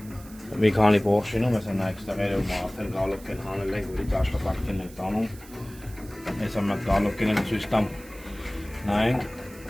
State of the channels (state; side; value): noise; right; hiss, 21 dB below the sound